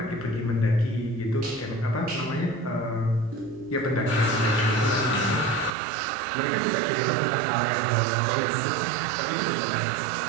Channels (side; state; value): left; drops out; at 5.7 s